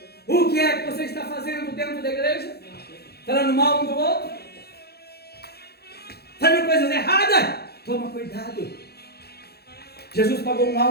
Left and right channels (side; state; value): right; late; 0.46 ms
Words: O que é que você está fazendo dentro da igreja? Falando mal um do outro? Fazendo coisas erradas? Toma cuidado. Jesus pagou um